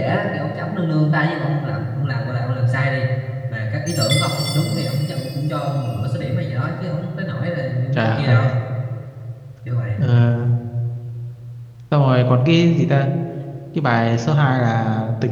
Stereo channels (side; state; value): both; identical; correlation 1.00